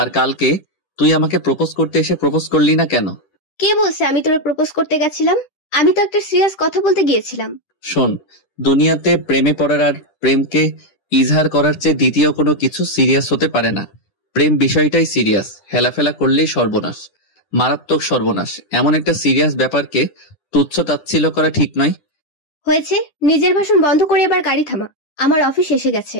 কালকে তুই আমাকে প্রপোজ করতে এসে প্রপোজ করলি না কেন? কে বলছে আমি তোরে প্রপোজ করতে গেছিলাম? আমি তো একটা সিরিয়াস কথা বলতে গিয়েছিলাম। শোন, দুনিয়াতে প্রেমে পড়ার আর প্রেমকে ইজহার করার চেয়ে দ্বিতীয় কোনো কিছু সিরিয়াস হতে পারে না। প্রেম বিষয়টাই সিরিয়াস, হেলাফেলা করলেই সর্বনাশ, মারাত্মক সর্বনাশ। এমন একটা সিরিয়াস ব্যাপারকে তুচ্ছ তাচ্ছিল্য করা ঠিক নয়। হয়েছে, নিজের ভাষণ বন্ধ করে এবার গাড়ি থামা। আমার অফিস এসে গেছে।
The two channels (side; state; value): right; late; 10 ms